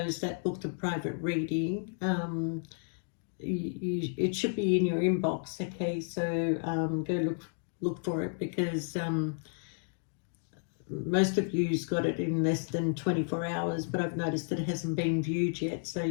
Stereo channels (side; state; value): right; silent; digital silence